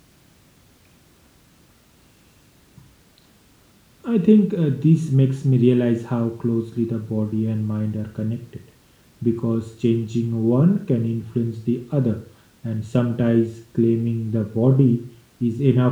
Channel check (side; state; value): both; identical; correlation 1.00